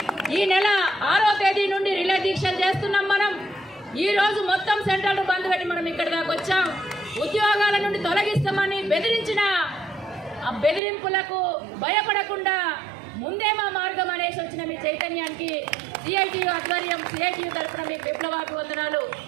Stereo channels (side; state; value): left; drops out; at 10.8 s